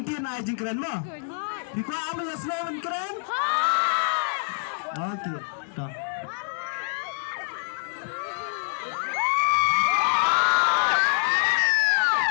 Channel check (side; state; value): right; silent; 61 dB below the other